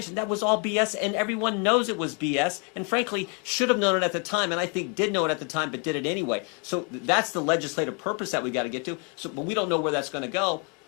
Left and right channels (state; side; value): quieter; right; 37.2 dB